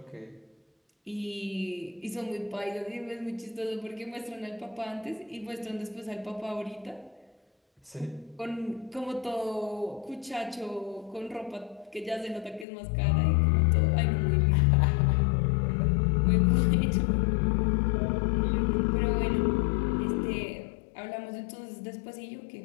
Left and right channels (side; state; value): right; drops out; at 12.7 s